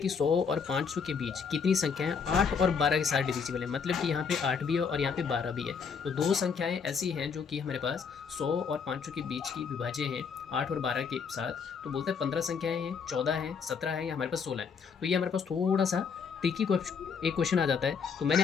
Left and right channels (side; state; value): right; quieter; 6.0 dB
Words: 100 और 500 के बीच कितनी संख्याएं 8 और 12 के साथ डिविजिबल है। मतलब कि यहाँ पे 8 भी है और यहाँ पे 12 भी है। तो दो संख्याएं ऐसी हैं जो कि हमारे पास 100 और 500 के बीच की विभाज्य हैं 8 और 12 के साथ। तो बोलते हैं 15 संख्याएं हैं, 14 हैं, 17 है या हमारे पास 16 है। तो ये हमारे पास थोड़ा सा ट्रिकी एक क्वेश्चन आ जाता है। तो मैंने